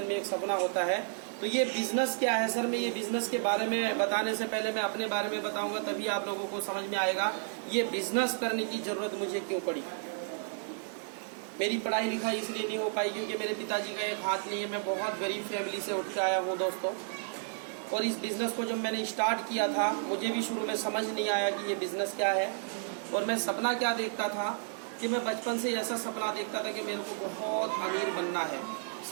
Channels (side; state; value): left; silent; digital silence